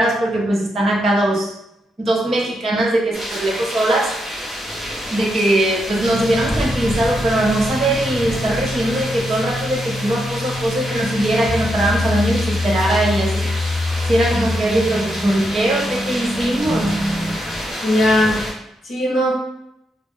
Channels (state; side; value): normal; both; correlation 0.82